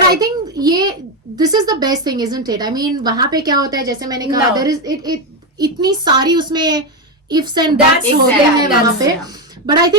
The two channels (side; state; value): both; normal; correlation 0.10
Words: I right. Think ये this is the best thing, isn't it? I mean वहां पे क्या होता है, जैसे मैंने कहा, No. देयर इज इट इतनी सारी उसमें इफ्स एंड That's दैट्स होते exactly, हैं वहां पे। that's- बट आई